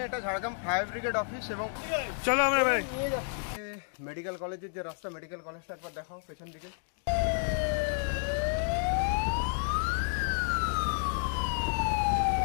এটা ঝাড়গ্রাম ফায়ার ব্রিগেড অফিস এবং চলো আমরা মেডিকেল কলেজের যে রাস্তা, মেডিকেল কলেজটা একবার দেখাও পেছন দিকে।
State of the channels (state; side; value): silent; right; 57 dB below the other